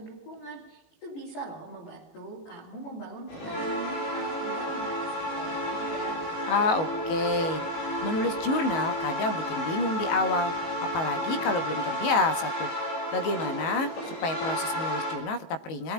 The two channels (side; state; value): right; late; 19 ms